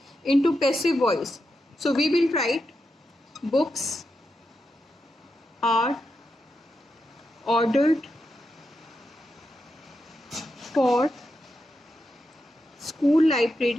into passive voice. So we will write books are ordered for school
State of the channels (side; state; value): both; normal; correlation 0.87